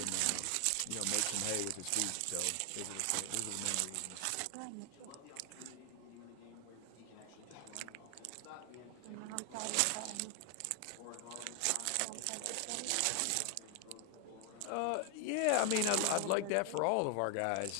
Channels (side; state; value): both; different; correlation 0.00